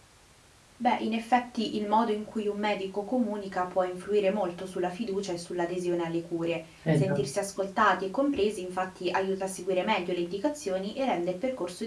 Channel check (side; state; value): both; identical; correlation 1.00